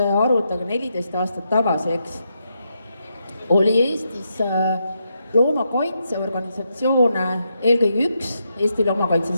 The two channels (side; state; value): both; inverted; correlation -0.82